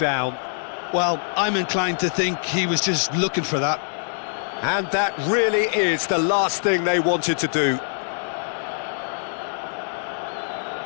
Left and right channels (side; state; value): right; silent; 63 dB below the other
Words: Well, I'm inclined to think he was just looking for that. And that really is the last thing they wanted to do.